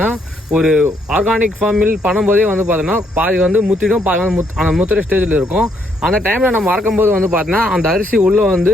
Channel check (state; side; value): normal; both; correlation 0.72